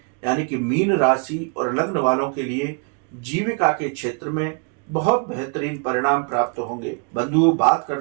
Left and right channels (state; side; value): quieter; left; 36.4 dB